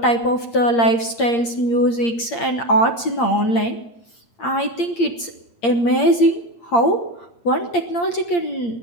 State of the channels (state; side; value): late; right; 8.6 ms